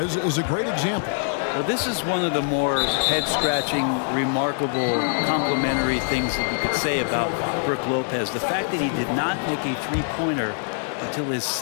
is a great example. Well, this is one of the more head-scratching, remarkable, complimentary things that you could say about Brook Lopez. The fact that he did not make a three-pointer until his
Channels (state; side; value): silent; right; digital silence